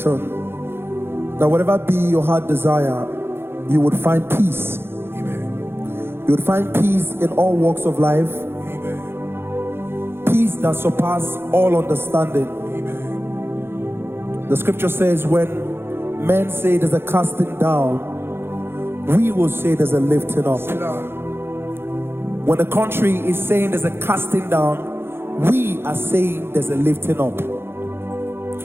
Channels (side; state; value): left; late; 0.11 ms